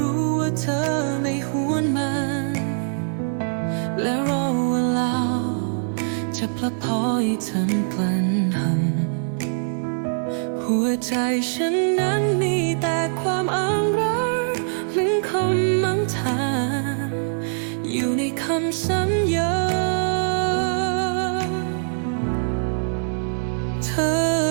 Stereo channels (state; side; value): silent; left; digital silence